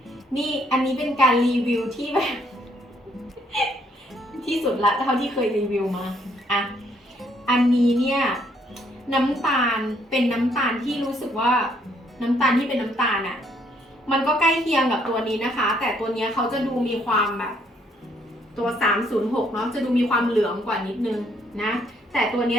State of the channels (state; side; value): normal; both; correlation 0.68